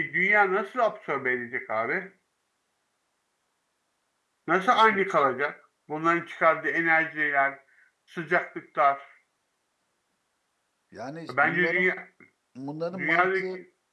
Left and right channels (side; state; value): both; identical; correlation 1.00